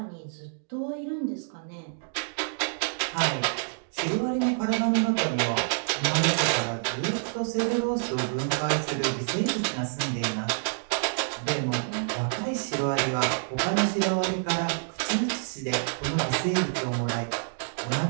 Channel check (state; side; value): silent; left; digital silence